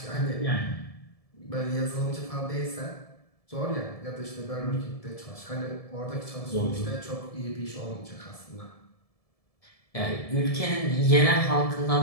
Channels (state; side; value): late; right; 1.7 ms